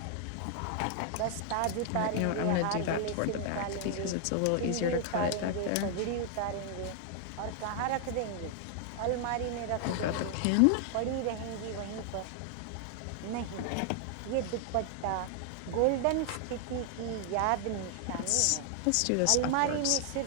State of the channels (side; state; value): both; different; correlation 0.00